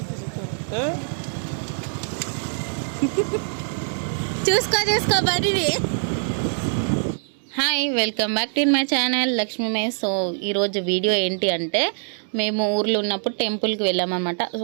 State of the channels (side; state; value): left; silent; digital silence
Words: చెప్తారు. చూసుకో బర్రీ. Hi, welcome back to my channel Lakshmi మే. సో ఈరోజు వీడియో ఏంటి అంటే, మేము ఊర్లో ఉన్నప్పుడు టెంపుల్కి వెళ్ళామన్నమాట.